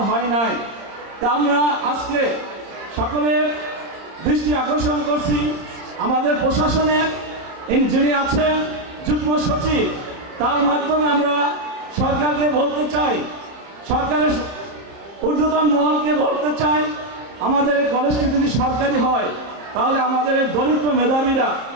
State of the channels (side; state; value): left; late; 30 ms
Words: হয় নাই। তা আমরা আজকে সকলের দৃষ্টি আকর্ষণ করছি আমাদের প্রশাসনের যিনি আছেন যুগ্ম সচিব, তার মাধ্যমে আমরা সরকারকে বলতে চাই, সরকারের ঊর্ধ্বতন মহলকে বলতে চাই, আমাদের এই কলেজটি যদি সরকারি হয় তাহলে আমাদের এই দরিদ্র মেধাবীরা